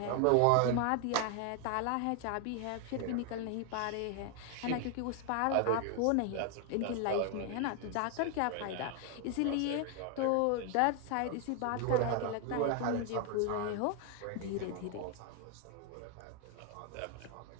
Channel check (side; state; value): both; different; correlation 0.00